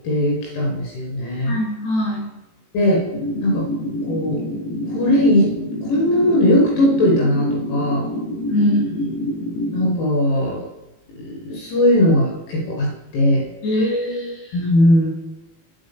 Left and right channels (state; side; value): late; right; 18 ms